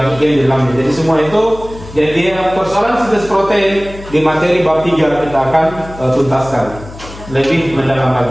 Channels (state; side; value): noise; left; hum, 16 dB below the sound